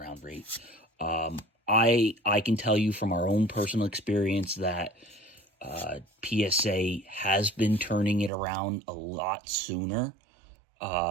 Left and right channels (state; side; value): drops out; left; at 8.3 s